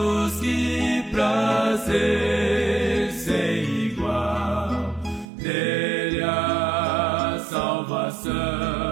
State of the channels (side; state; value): left; drops out; at 5.3 s